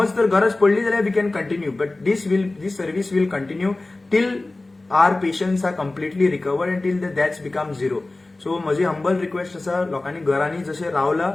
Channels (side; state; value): right; quieter; 3.0 dB